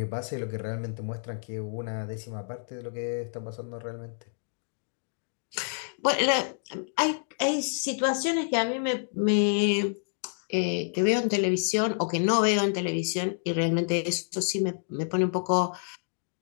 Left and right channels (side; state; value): right; silent; digital silence